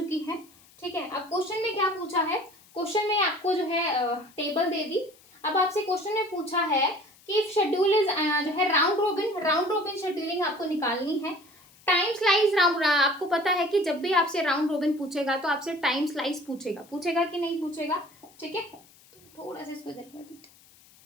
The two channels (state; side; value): noise; left; hiss, 27 dB below the sound